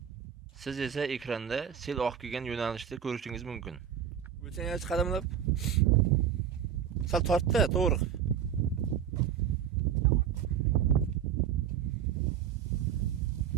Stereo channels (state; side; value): quieter; left; 8.8 dB